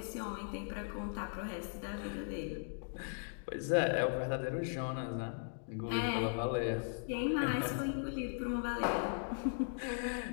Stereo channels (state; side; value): silent; right; digital silence